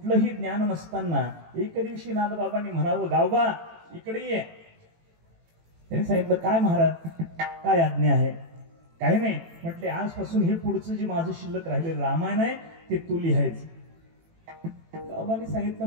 ज्ञान नसताना एक दिवशी नाथ बाबांनी म्हणावं गावबा इकडे ये. त्यांनी सांगितलं काय महाराज, काय आज्ञा आहे? काही नाही. म्हटले आजपासून हे पुढचं जे माझं शिल्लक राहिलेलं रामायण आहे ते तू लिहायचं. गावबाने सांगितलं.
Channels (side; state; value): left; late; 18 ms